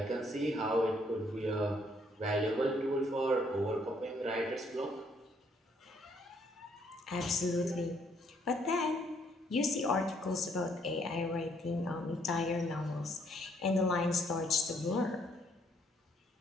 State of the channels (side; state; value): both; normal; correlation 0.68